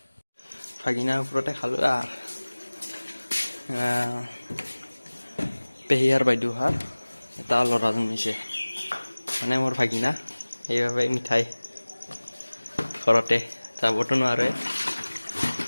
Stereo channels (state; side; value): inverted; both; correlation -1.00